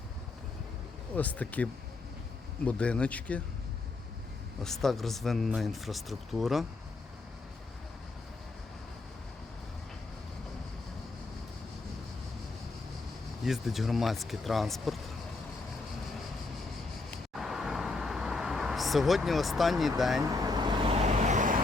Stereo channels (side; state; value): right; quieter; 3.5 dB